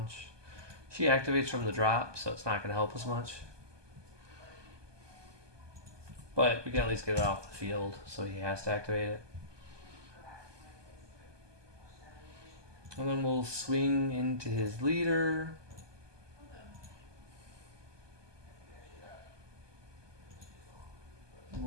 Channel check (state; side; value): late; left; 1.2 ms